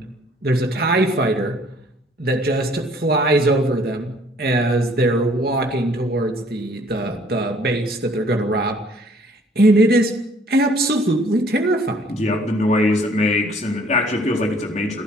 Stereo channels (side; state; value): both; normal; correlation 0.59